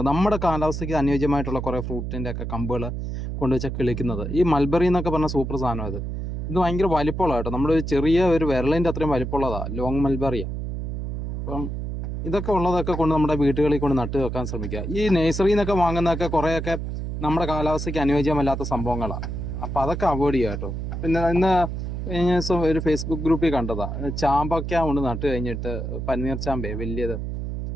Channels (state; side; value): noise; right; hum, 4 dB below the sound